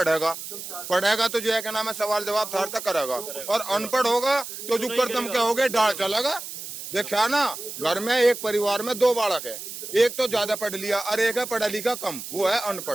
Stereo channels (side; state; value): right; noise; hiss, 10 dB below the sound